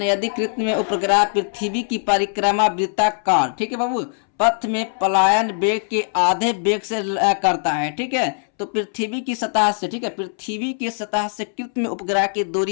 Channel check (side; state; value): right; silent; 65 dB below the other